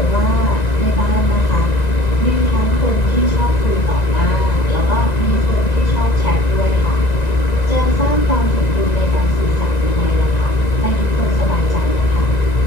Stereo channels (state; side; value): late; right; 1.9 ms